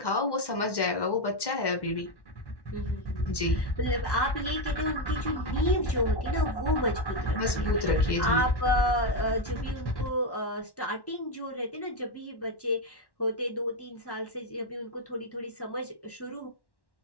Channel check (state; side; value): late; right; 1.1 ms